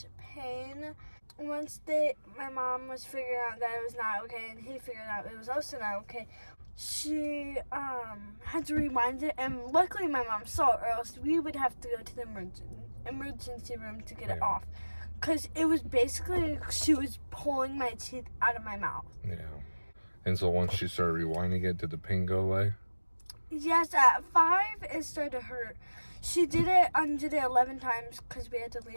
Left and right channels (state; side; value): inverted; both; correlation -1.00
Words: pain. Once my mom was figuring out that it was not okay, and he figured out it was also not okay, she had to rewind it, and luckily my mom saw it, or else we would have to go to the emergency room to get it off, because it was basically she was pulling my teeth out of my mouth. Yeah. And so once she started rewinding it, did the pain go away? Yes, at 5 it started to hurt. She did it 11 times because we had to